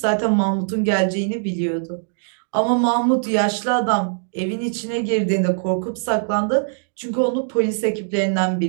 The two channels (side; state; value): left; silent; digital silence